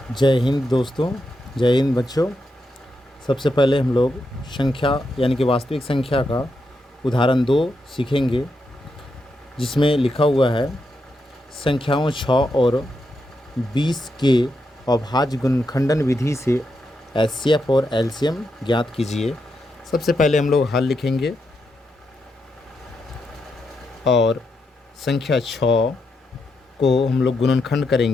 जय हिंद दोस्तों। जय हिंद बच्चों। सबसे पहले हम लोग संख्या यानी कि वास्तविक संख्या का उदाहरण 2 सीखेंगे, जिसमें लिखा हुआ है संख्याओं 6 और 20 के अभाज्य गुणनखंडन विधि से एचसीएफ और एलसीएम ज्ञात कीजिए। सबसे पहले हम लोग हल लिखेंगे और संख्या 6 को हम लोग गुणनखंड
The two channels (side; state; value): both; normal; correlation 0.83